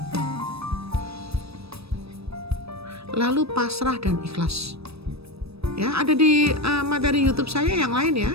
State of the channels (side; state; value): left; late; 0.78 ms